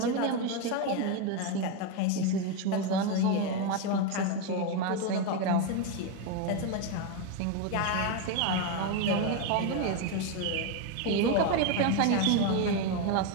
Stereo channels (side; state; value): both; different; correlation 0.02